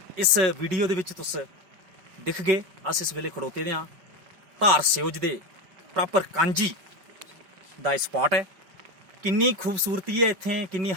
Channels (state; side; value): late; left; 5.3 ms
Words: इस वीडियो दे विच तुस दिख गए अस इस वेले खड़ोते दे हां धार सियोज दे प्रॉपर कांजी दा स्पॉट है। किन्नी खूबसूरती है इत्थे, किन्नी